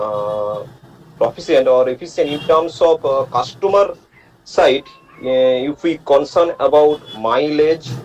proficient or efficient in terms of customer side? If we concern about mileage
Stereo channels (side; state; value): both; identical; correlation 1.00